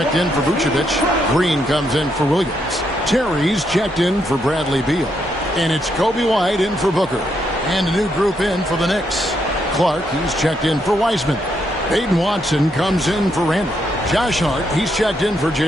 in for Vucevic. Green comes in for Williams. Terry's checked in for Bradley Beal. And it's Kobe White in for Booker. And a new group in for the Knicks. Clark, he's checked in for Wiseman. Aiden Watson comes in for Randall. Josh Hart, he's checked in for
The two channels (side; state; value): both; normal; correlation 0.77